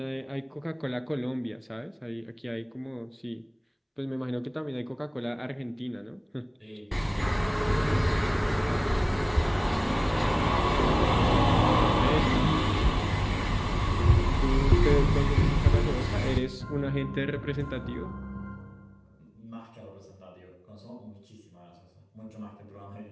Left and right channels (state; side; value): identical; both; correlation 1.00